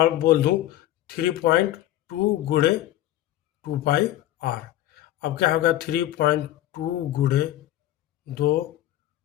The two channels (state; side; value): quieter; right; 14.0 dB